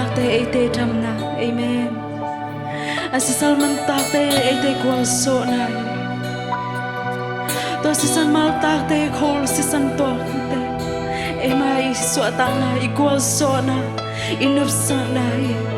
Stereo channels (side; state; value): both; identical; correlation 1.00